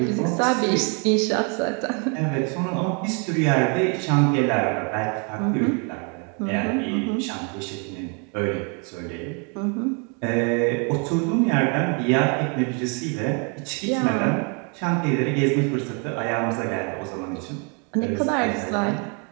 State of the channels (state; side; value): quieter; left; 36.3 dB